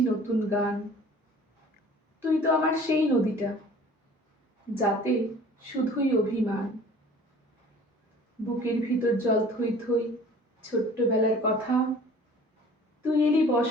নতুন গান। তুই তো আমার সেই নদীটা, যাতে শুধুই অভিমান। বুকের ভিতর জল থই থই ছোট্টবেলার কথা। তুই এলি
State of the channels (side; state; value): both; normal; correlation 0.48